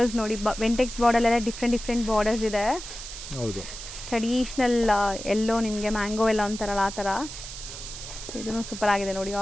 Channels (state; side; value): noise; right; hiss, 10 dB below the sound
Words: ನೋಡಿ, ವೆಂಟೆಕ್ಸ್ ಬಾರ್ಡರ್ ಎಲ್ಲ ಡಿಫ್ರೆಂಟ್ ಬಾರ್ಡರ್ಸ್ ಇದೆ. ಹೌದು ಟ್ರೆಡಿಷನಲ್ ಎಲ್ಲೋ ನಿಮಗೆ ಮ್ಯಾಂಗೋ ಎಲ್ಲ ಅಂತಾರಲ್ಲ ಆ ಥರ. ಸೊ ಇದೂ ಸೂಪರ್ ಆಗಿದೆ ನೋಡಿ.